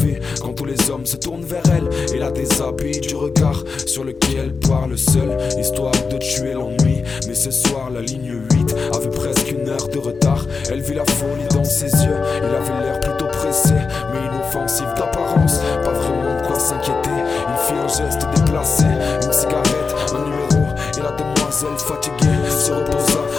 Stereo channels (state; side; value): quieter; right; 4.8 dB